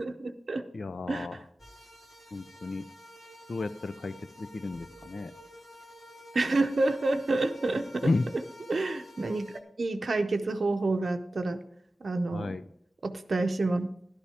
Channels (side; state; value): both; normal; correlation 0.94